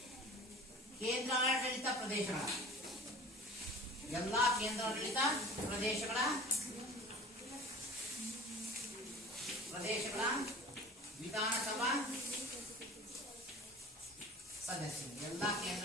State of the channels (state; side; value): normal; both; correlation 0.41